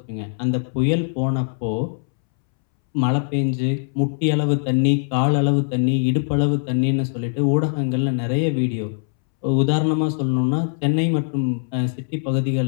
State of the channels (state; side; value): silent; right; 65 dB below the other